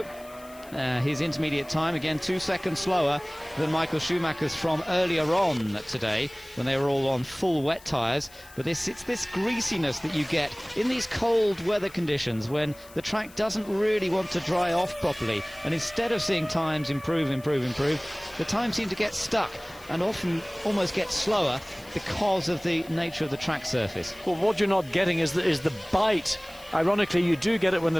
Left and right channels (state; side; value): noise; left; hiss, 22 dB below the sound